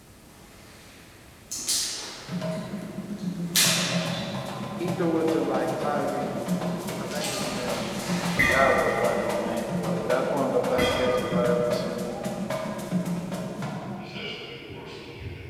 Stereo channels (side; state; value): both; identical; correlation 1.00